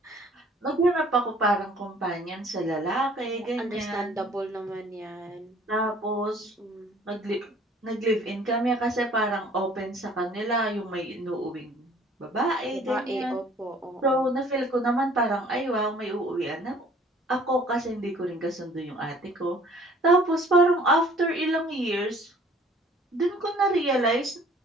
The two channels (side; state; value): both; normal; correlation 0.54